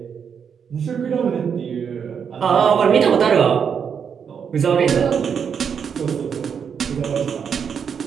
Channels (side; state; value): left; quieter; 7.1 dB